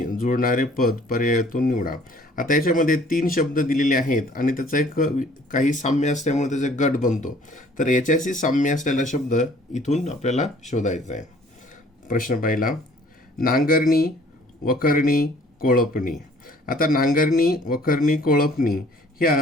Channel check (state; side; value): normal; both; correlation 0.56